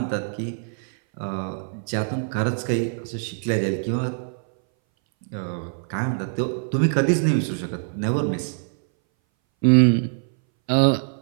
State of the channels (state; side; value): silent; left; 60 dB below the other